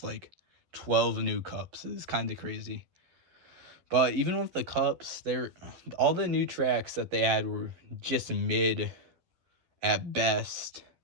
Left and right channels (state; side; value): late; left; 11 ms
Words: like, 12 new cups. It's kind of crazy. But even with the cups, all the new tracks that they had were just mid at best.